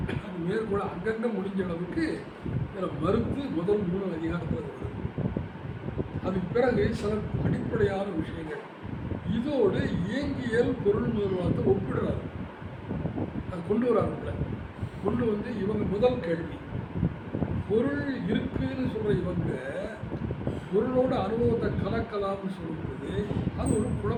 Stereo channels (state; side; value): identical; both; correlation 1.00